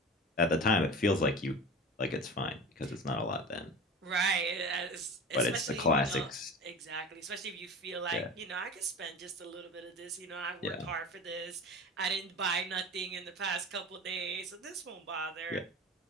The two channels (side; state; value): both; normal; correlation 0.34